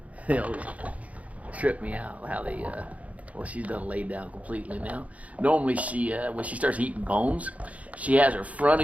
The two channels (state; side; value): late; left; 0.068 ms